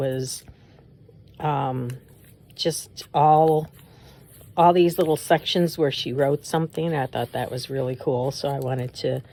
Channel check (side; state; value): both; identical; correlation 1.00